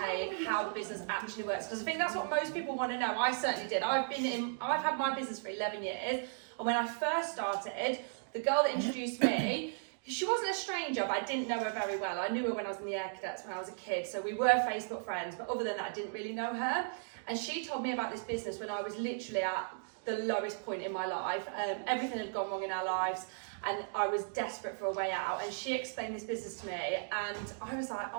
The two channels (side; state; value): left; silent; digital silence